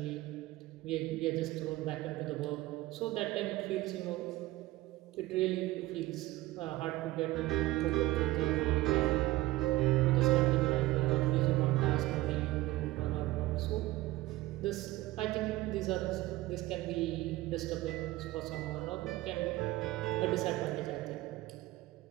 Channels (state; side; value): quieter; left; 17.7 dB